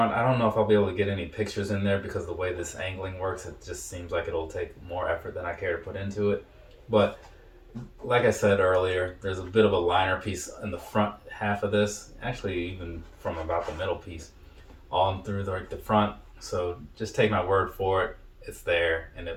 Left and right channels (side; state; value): both; identical; correlation 1.00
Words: I don't know if I'll be able to get any pictures in there because the way this angling works, it just seems like it'll take more effort than I care to put into it. But like I said earlier, there's a bit of a liner piece in the front half of this, actually even from about the middle piece on through the front. So just take my word for it. It's there, and